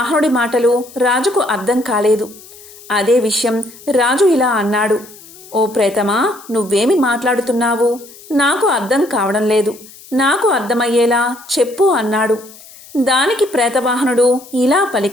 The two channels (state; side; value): noise; left; hiss, 21 dB below the sound